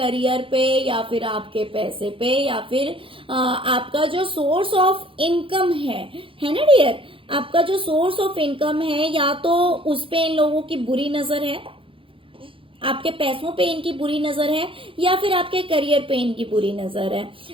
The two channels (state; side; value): late; left; 0.25 ms